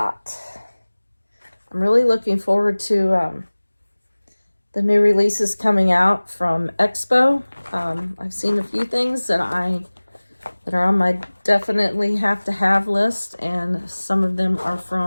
I'm really looking forward to the new releases coming out from Expo. I've seen a few things that are on my definitely have to have list, and some of them are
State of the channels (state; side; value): inverted; both; correlation -1.00